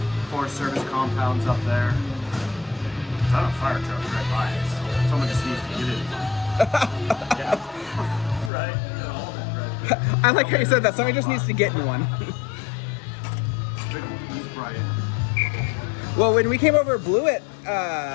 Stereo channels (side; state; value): right; drops out; at 8.5 s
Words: Forest Service compounds up there. It's not a fire truck right by it. So someone just needs to get in. Yeah. Right. I like how you said that. Somebody just needs to get in one. He's bright. Well, when we came over Blewett